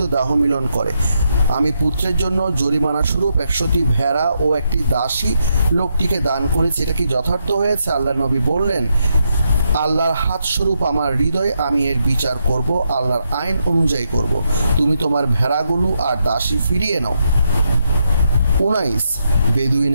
দাহ মিলন করে। আমি পুত্রের জন্য জরিমানা স্বরূপ 100টি ভেড়া ও একটি দাসী লোকটিকে দান করেছি। এটা কি যথার্থ হয়েছে? আল্লাহর নবী বললেন, আল্লাহর হাত স্বরূপ আমার হৃদয়, আমি এর বিচার করব, আল্লাহর আইন অনুযায়ী করব। তুমি তোমার ভেড়াগুলো আর দাসী ফিরিয়ে নাও। 19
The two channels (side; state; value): both; inverted; correlation -0.81